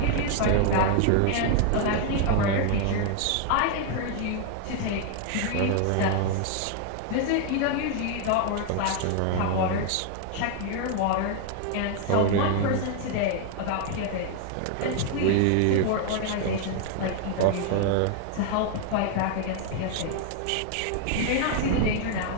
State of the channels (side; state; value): both; different; correlation 0.00